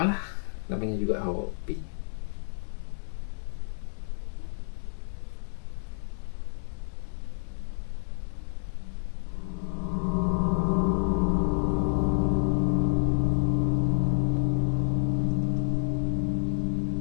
lah, namanya juga hobi.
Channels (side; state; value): right; silent; 59 dB below the other